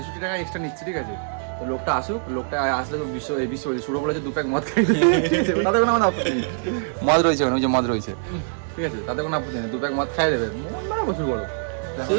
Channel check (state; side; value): silent; left; digital silence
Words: টাকা এক্সট্রা নিচ্ছে। ঠিক আছে, তো লোকটা আসুক, লোকটা আসলে তো বিশ্ব এই বিশ্ব শুরু বলেছে 2 প্যাক মদ খাই। ঠিক আছে, তাতে কোনো আমাদের আপত্তি নেই, মদ রয়েছে ওখানে, ওই যে মদ রয়েছে। ঠিক আছে, তাতে কোনো আপত্তি নেই, 2 প্যাক মদ খাই দেবে, মন মানে প্রচুর বড়।